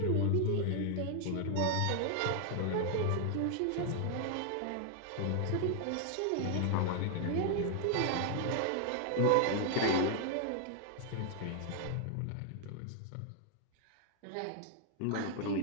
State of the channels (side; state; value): both; different; correlation 0.00